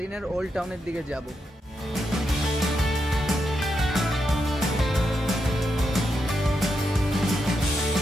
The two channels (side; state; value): both; normal; correlation 0.84